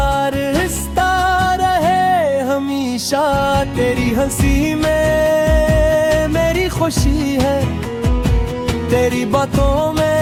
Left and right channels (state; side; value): identical; both; correlation 1.00